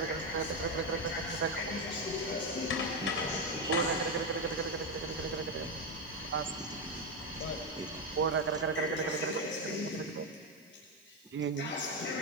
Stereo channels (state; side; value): noise; right; hiss, 28 dB below the sound